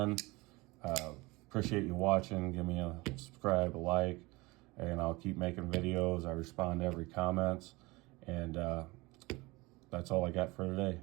appreciate you watching. Give me a subscribe, a like, and I'll keep making videos. I respond to every comments, and that's all I got for today.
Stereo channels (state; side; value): quieter; left; 23.1 dB